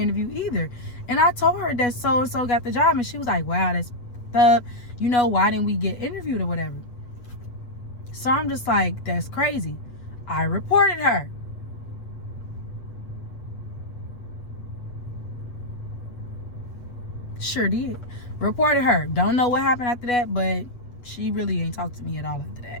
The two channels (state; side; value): late; right; 8.2 ms